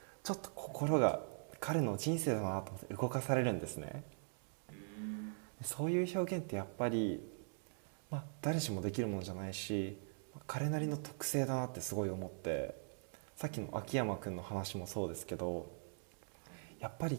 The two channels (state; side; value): silent; left; digital silence